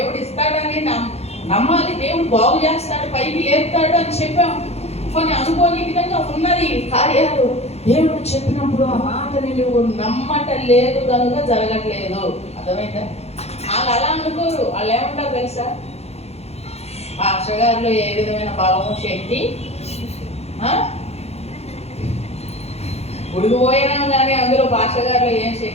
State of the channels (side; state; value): right; late; 0.31 ms